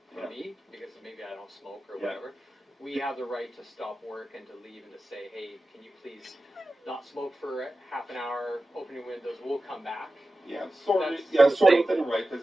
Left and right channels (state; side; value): normal; both; correlation 0.94